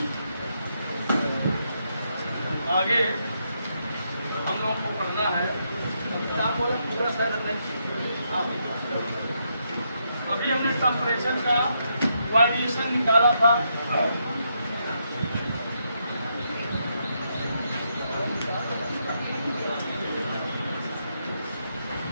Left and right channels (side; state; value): both; inverted; correlation -0.79